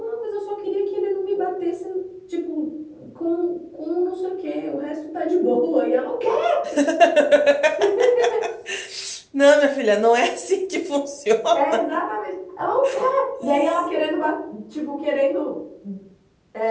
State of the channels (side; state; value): both; identical; correlation 1.00